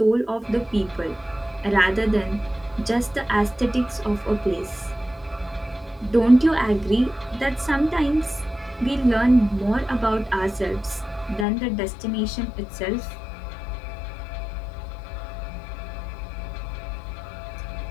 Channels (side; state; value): right; drops out; at 11.5 s